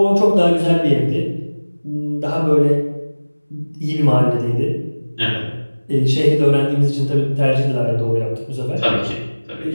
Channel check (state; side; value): inverted; both; correlation -1.00